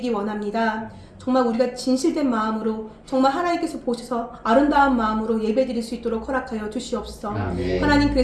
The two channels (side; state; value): both; identical; correlation 1.00